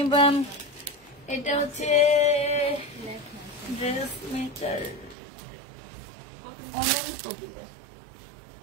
এটা হচ্ছে ড্রেস মেকার অনন্ত দিলে,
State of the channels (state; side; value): drops out; left; at 5.2 s